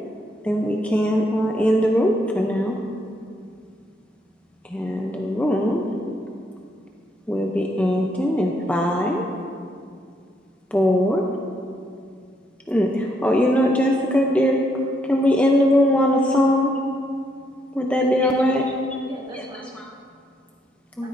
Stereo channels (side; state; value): both; normal; correlation 0.74